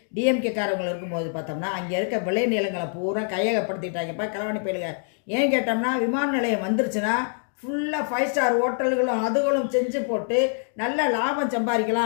டிஎம்கே காரவங்க இருக்கும்போது பார்த்தோம்னா, அங்கே இருக்க விளை நிலங்களை பூரா கையகப்படுத்திட்டாங்கப்பா களவாணி பயலுக. ஏன் கேட்டோம்னா, விமான நிலையம் வந்துருச்சுன்னா ஃபுல்லாக 5 ஸ்டார் ஹோட்டல்களும் அதுகளும் செஞ்சு போட்டு நல்ல லாபம்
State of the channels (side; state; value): right; silent; 62 dB below the other